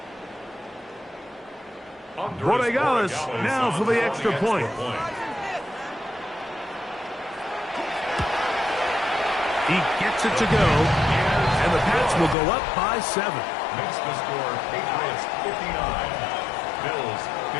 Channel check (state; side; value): drops out; right; at 12.4 s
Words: Borregales now for the extra point. He gets it to go, and the Pats will go up by 7. Makes the score Patriots 59, Bills